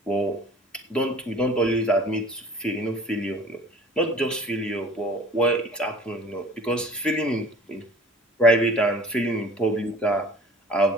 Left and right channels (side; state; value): both; normal; correlation 0.46